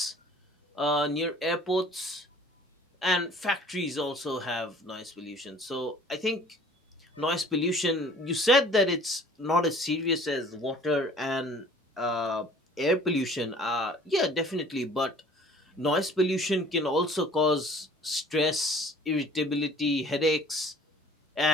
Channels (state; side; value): normal; both; correlation 0.51